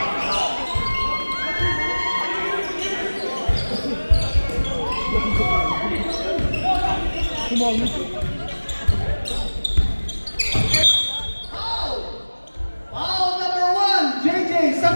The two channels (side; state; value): both; inverted; correlation -1.00